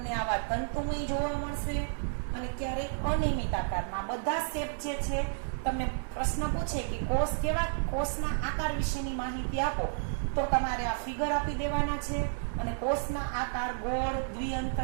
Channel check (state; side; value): silent; left; digital silence